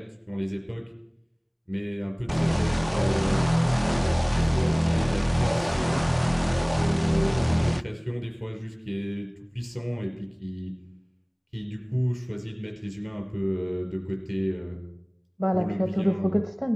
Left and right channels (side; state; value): both; identical; correlation 1.00